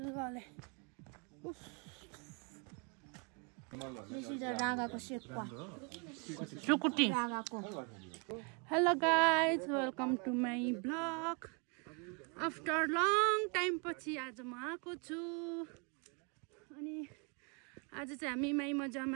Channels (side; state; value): left; quieter; 35.3 dB